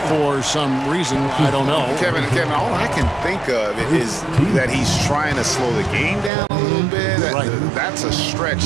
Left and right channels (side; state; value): left; drops out; at 6.3 s